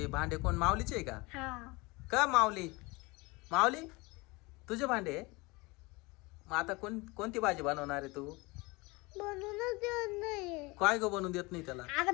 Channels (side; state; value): right; quieter; 24.8 dB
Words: भांडे कोण, माऊलीचे आहे का? हा. का माऊली? माऊली तुझे भांडे? मग आता कोणती भाजी बनवणार आहे तू? बनवूनच देत नाही. काय ग बनवून देत नाही त्याला? आता